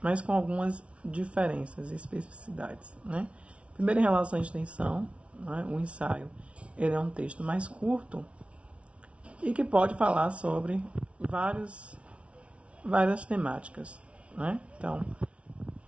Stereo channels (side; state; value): left; late; 0.061 ms